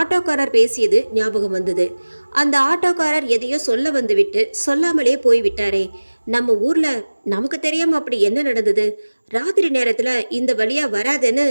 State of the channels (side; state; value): both; inverted; correlation -1.00